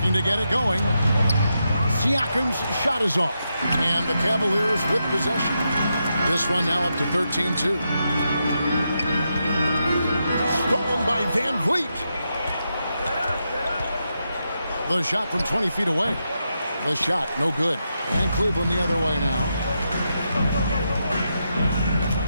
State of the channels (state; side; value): inverted; both; correlation -0.85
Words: to get it going. Siakam's shot is off. And the Cavaliers with possession. This run now up to 13-2. Stolen by Van Vliet. The shot from 20 feet away. The shot, no good. And Cleveland the other way now.